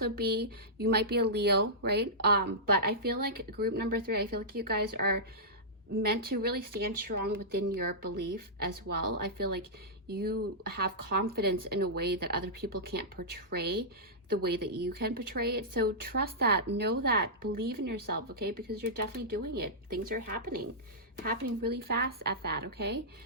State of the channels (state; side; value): normal; both; correlation -0.14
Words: be, you might be a Leo, right? But I feel like group number 3, I feel like you guys are meant to really stand strong within your belief as well. I feel like you have confidence in a way that other people can't portray the way that you can portray it. So trust that, know that, believe in yourself, okay? Because you're definitely doing it. Things are happening really fast at that, okay?